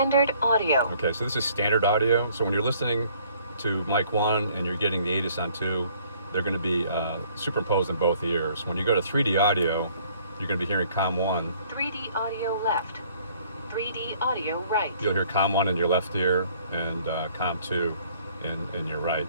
audio. Okay, so this is standard audio. So when you're listening to mic 1 and you're getting the ATIS on 2, they're going to be superimposed in both ears. When you go to 3D audio, you're going to be hearing COM 1. 3D audio left. 3D audio right. You'll hear COM 1 in your left ear and COM 2 in your right.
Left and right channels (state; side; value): inverted; both; correlation -0.60